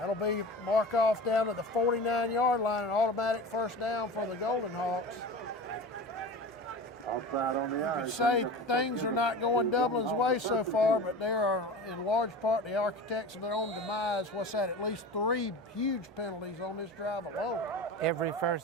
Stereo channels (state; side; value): normal; both; correlation 0.32